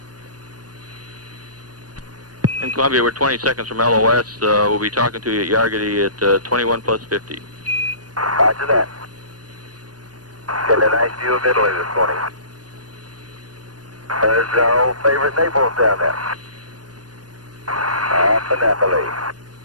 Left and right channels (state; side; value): late; left; 0.69 ms